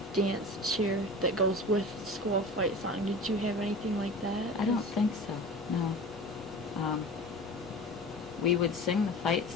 dance cheer that goes with the school fight song? Did you have anything like that? I don't think so, no. We would sing the fight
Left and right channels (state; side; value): normal; both; correlation 0.36